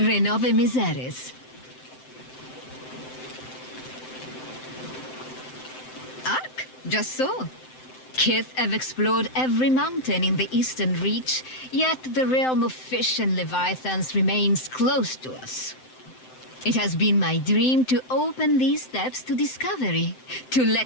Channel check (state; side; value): late; right; 7.8 ms